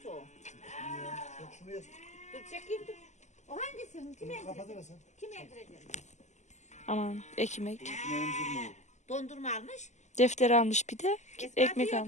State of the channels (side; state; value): right; late; 0.34 ms